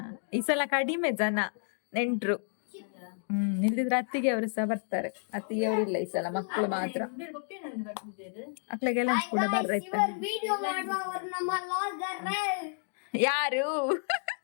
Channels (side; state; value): right; silent; digital silence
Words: ಈ ಸಲ ಕಡಿಮೆ ಜನ ನೆಂಟ್ರು. ಇಲ್ದಿದ್ರೆ ಅತ್ತಿಗೆ ಅವರು ಸಹ ಬರ್ತಾರೆ. ಅತ್ತಿಗೆ ಅವರು ಇಲ್ಲ ಈ ಸಲ, ಮಕ್ಕಳು ಮಾತ್ರ. ಮಕ್ಳಿಗೆಲ್ಲ ಕೂಡ ಬರ್ರೈತೆ. ಯಾರು